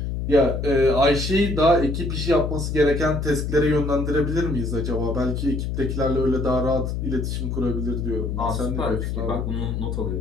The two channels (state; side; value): noise; left; hum, 2 dB below the sound